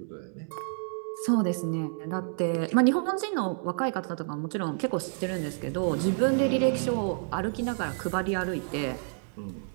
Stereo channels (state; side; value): silent; left; 58 dB below the other